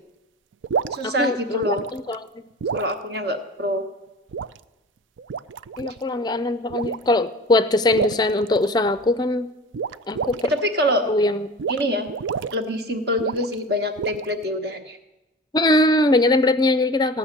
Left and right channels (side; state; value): both; normal; correlation 0.36